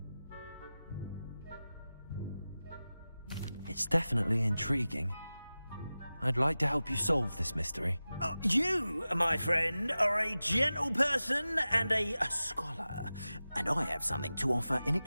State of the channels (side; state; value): both; inverted; correlation -0.95